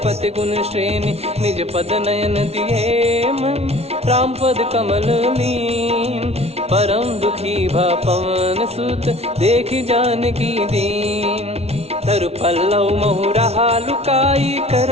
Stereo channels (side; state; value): left; late; 0.31 ms